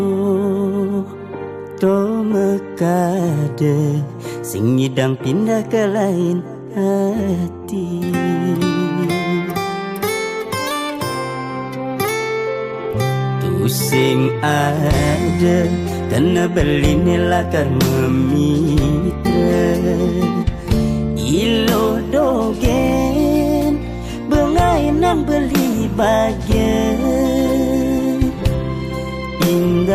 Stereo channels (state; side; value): identical; both; correlation 1.00